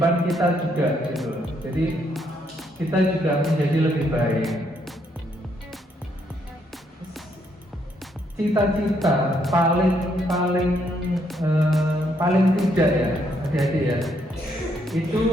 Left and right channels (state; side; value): normal; both; correlation 0.73